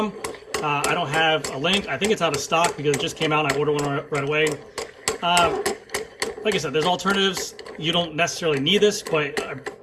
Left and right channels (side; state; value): both; identical; correlation 1.00